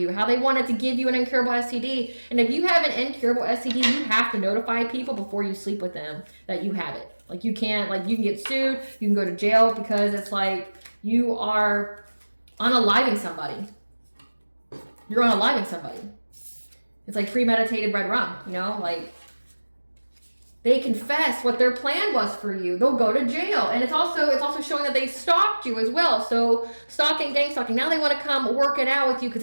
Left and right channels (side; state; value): both; inverted; correlation -1.00